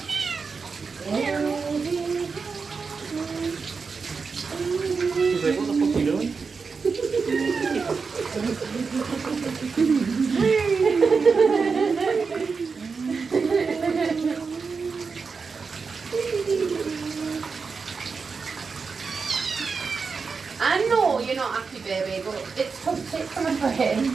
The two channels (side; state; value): left; quieter; 5.0 dB